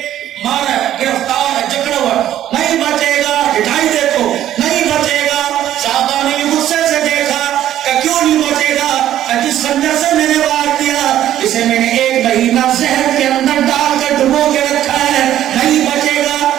مارا گرفتار جکڑا ہوا نہیں بچے گا ہٹائی دیکھو نہیں بچے گا صحابہ نے بھی غصے سے دیکھا کہ کیوں نہیں بچے گا کہ جس خنجر سے میں نے وار دیا اسے میں نے 1 مہینہ زہر کے اندر ڈال کر ڈبو کے رکھا ہے نہیں بچے گا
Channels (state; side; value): quieter; left; 12.0 dB